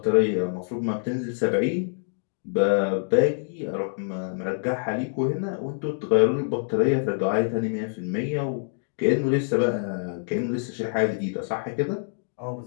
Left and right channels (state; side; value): silent; right; digital silence